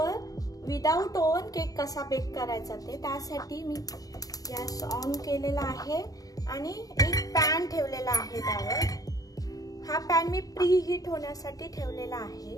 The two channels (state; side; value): late; right; 0.18 ms